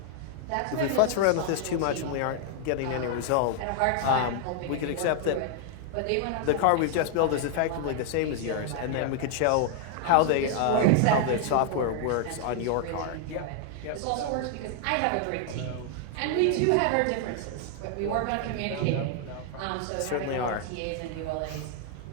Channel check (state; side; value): different; both; correlation 0.00